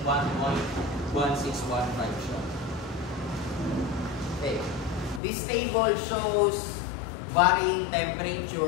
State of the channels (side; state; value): right; drops out; at 5.2 s